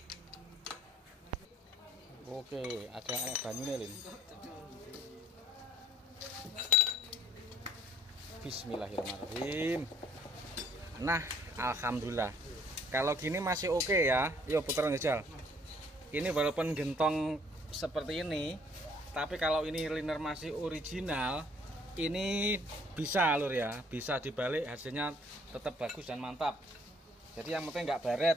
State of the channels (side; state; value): both; normal; correlation 0.61